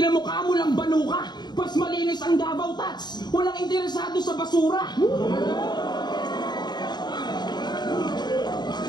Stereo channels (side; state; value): right; late; 0.21 ms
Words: mo lang banuka, pas malinis ang Davao Tats, walang interesado sa basura.